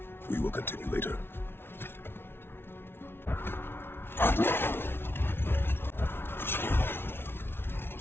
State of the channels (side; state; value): right; late; 0.11 ms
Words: We will continue later.